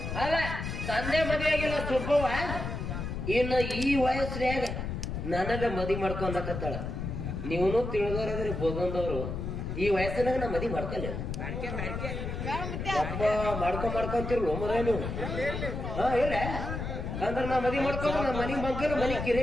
ಅಲ್ಲ ತಂದೆ ಮದುವೆಯಾಗಿಲ್ಲ ಸುಬ್ಬವ್ವ ಇನ್ನು ಈ ವಯಸ್ಸಿನಾಗ ನನಗ ಮದಿ ಮಾಡ್ಕೊಂಡಕತ್ತಾಳ ನೀವನು ತಿಳಿದವ್ರಾದ್ರೆ ಬೋದಂದವ್ರು ಈ ವಯಸ್ಸಿನಾಗ ನಾ ಮದಿ ಮಾಡ್ಕೊಲ್ಲ ಒಬ್ಬ ಮಾಡ್ಕೊಂತಿರ್ಲು ಮರ ನೀವು ಇಲ್ಲ ಅಂದ್ರ ನಾ ಮದಿ ಮಾಡ್ಕೊಂಡು ನಾ ಮನಿ ಮಗ್ಗಲು ಮನಿ ಕಿರೆ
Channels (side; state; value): left; noise; rumble, 4 dB below the sound